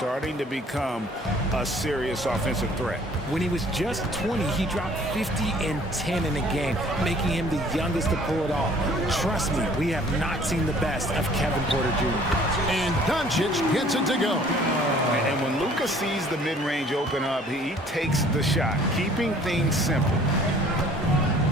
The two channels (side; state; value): both; normal; correlation 0.55